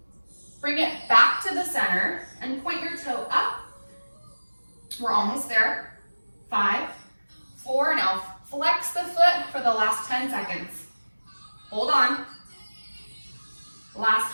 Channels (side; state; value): both; inverted; correlation -1.00